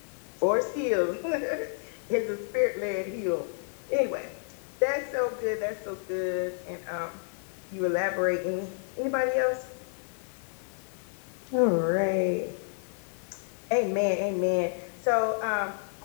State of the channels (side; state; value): right; silent; 58 dB below the other